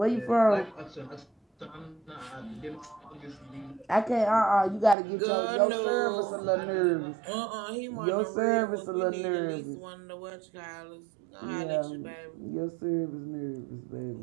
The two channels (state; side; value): drops out; left; at 5.0 s